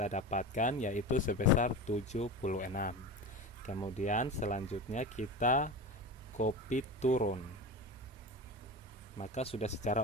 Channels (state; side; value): normal; both; correlation 0.27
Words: dapatkan, yaitu sebesar 76. Kemudian selanjutnya kita copy turun, maka sudah secara